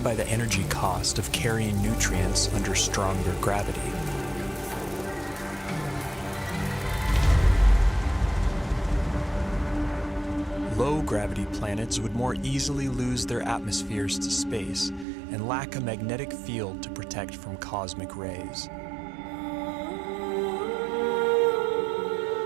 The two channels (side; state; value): left; drops out; at 15.1 s